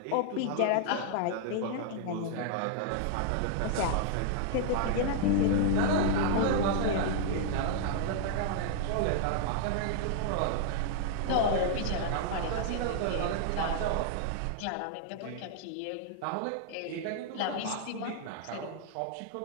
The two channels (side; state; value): both; different; correlation 0.00